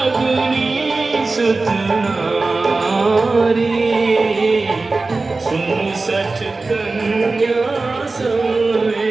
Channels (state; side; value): quieter; left; 3.6 dB